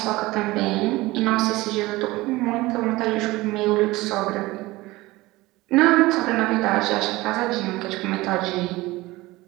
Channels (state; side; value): quieter; left; 19.9 dB